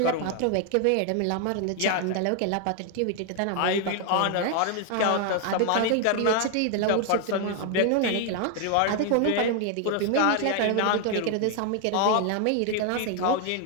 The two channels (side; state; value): both; different; correlation 0.00